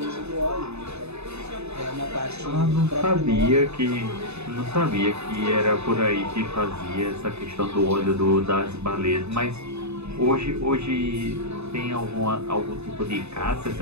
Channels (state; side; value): late; left; 0.80 ms